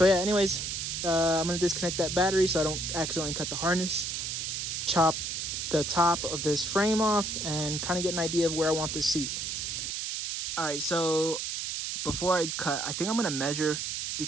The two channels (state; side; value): noise; right; hiss, 3 dB below the sound